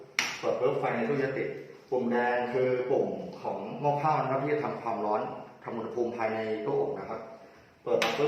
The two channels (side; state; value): both; identical; correlation 1.00